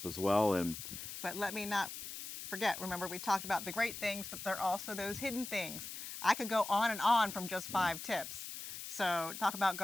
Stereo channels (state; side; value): noise; left; hiss, 9 dB below the sound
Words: as well. And But let me not forget, remember we talked about the great things, but there are also those hidden things. I could go on and on from just yeah, 5 tips. So talk about